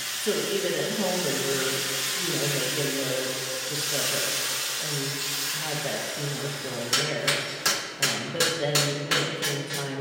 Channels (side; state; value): both; identical; correlation 1.00